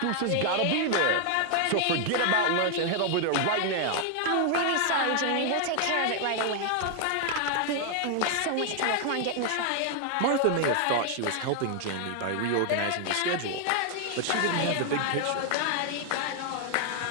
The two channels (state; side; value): different; both; correlation 0.00